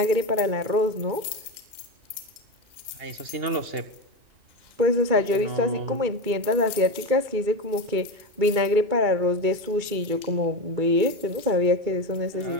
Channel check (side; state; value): left; late; 2.1 ms